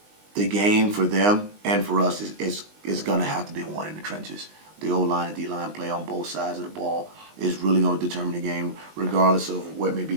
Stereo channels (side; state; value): left; late; 19 ms